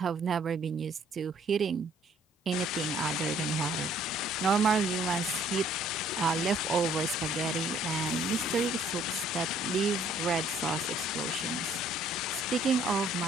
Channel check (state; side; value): normal; both; correlation 0.61